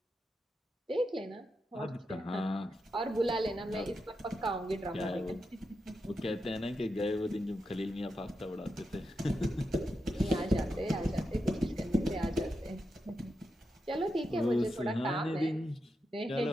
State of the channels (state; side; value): normal; both; correlation 0.87